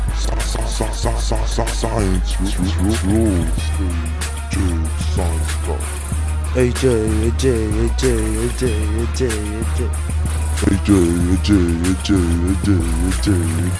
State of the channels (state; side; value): identical; both; correlation 1.00